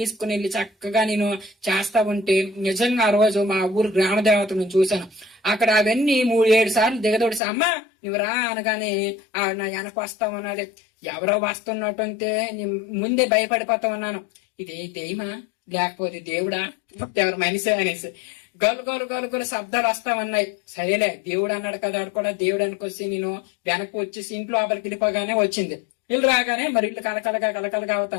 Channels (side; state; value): right; drops out; at 7.4 s